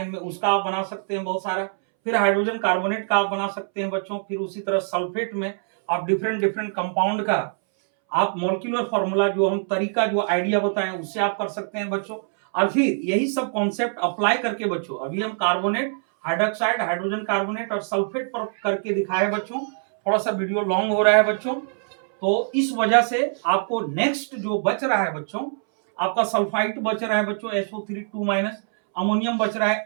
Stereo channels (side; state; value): left; silent; 63 dB below the other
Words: में, उसका आप बना सकते हैं बहुत सारा। फिर हाइड्रोजन कार्बोनेट का आप बना सकते हैं बच्चों। फिर उसी तरह सल्फेट में आप डिफरेंट डिफरेंट कंपाउंड का आप मॉलिक्यूलर फॉर्मूला जो हम तरीका जो आइडिया बताएं उससे आप कर सकते हैं बच्चों। और फिर यही सब कॉन्सेप्ट अप्लाई करके बच्चों, अभी हम कार्बोनेट, हाइड्रोक्साइड, हाइड्रोजन कार्बोनेट और सल्फेट पर करके दिखाए बच्चों। थोड़ा सा वीडियो लॉन्ग हो रहा है बच्चों, तो इस वजह से आपको नेक्स्ट जो बच रहा है बच्चों, आपका सल्फाइड बच रहा है बच्चों SO3 2-, अमोनियम बच रहा